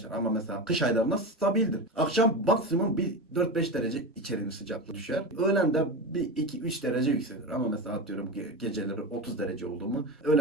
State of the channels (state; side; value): normal; both; correlation 0.23